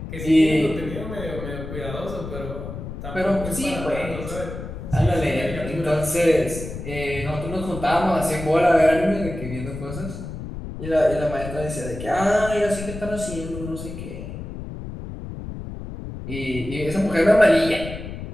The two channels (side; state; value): left; noise; rumble, 9 dB below the sound